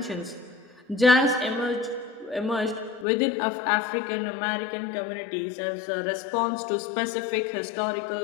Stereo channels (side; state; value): right; drops out; at 3.1 s